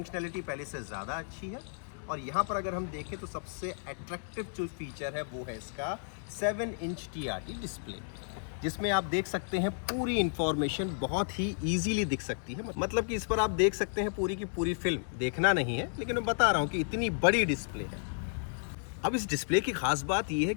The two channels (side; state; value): right; silent; digital silence